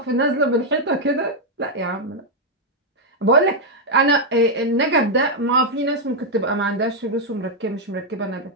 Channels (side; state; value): both; normal; correlation -0.01